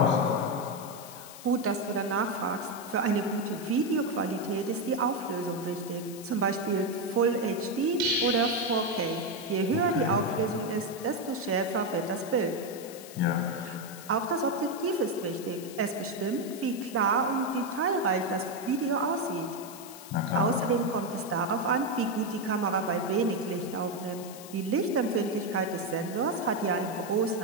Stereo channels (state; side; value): noise; left; hiss, 15 dB below the sound